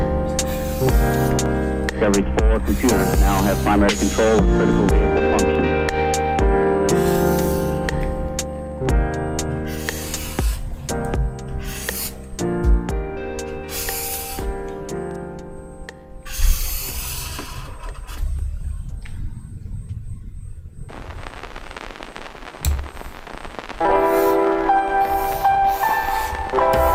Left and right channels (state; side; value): identical; both; correlation 1.00